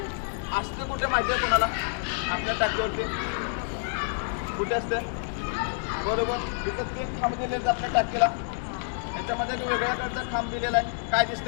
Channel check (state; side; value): silent; right; digital silence